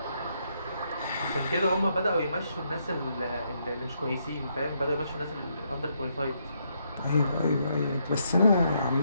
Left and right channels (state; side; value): inverted; both; correlation -0.76